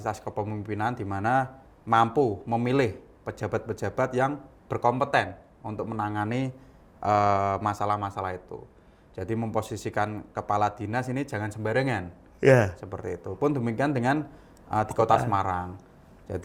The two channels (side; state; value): both; identical; correlation 1.00